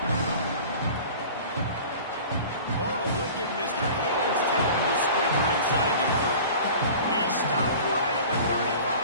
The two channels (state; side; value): inverted; both; correlation -0.41